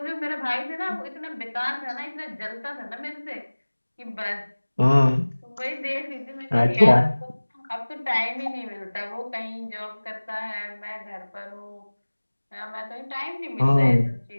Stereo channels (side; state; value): both; inverted; correlation -1.00